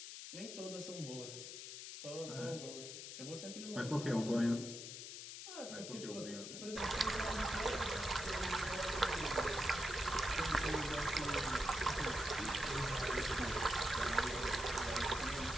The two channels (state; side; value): noise; left; hiss, 9 dB below the sound